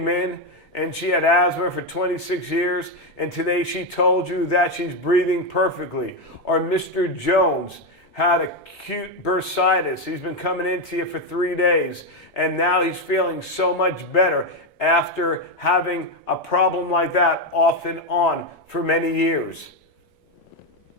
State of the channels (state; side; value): normal; both; correlation 0.07